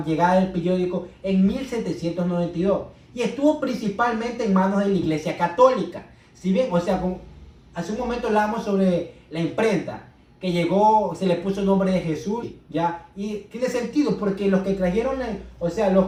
llegada del periódico en 1792 y estuvo principalmente en manos de la Iglesia Católica. Si bien, o sea, hace un momento hablábamos sobre la imprenta, que llegó, se le puso el nombre de Jesús, ¿ya? Y tiene sentido, porque los que trajeron,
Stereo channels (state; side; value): identical; both; correlation 1.00